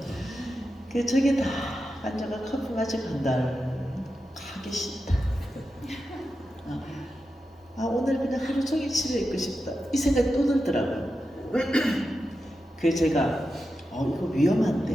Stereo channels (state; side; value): normal; both; correlation 0.90